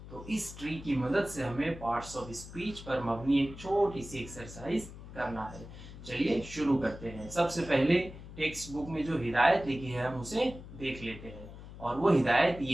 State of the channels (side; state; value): left; noise; hum, 14 dB below the sound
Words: तो इस ट्री की मदद से हमें पार्ट्स ऑफ स्पीच पर मबनी एक छोटी सी एक्सरसाइज करना है। चलिए शुरू करते हैं। सबसे पहले टेक्स्ट बुक में जो हिदायत लिखी है हम उसे देख लेते हैं, और वो हिदायत